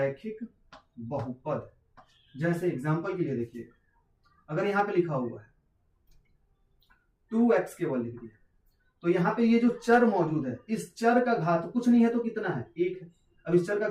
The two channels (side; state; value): both; identical; correlation 1.00